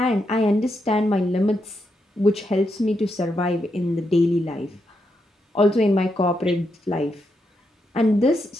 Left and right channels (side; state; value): both; normal; correlation 0.82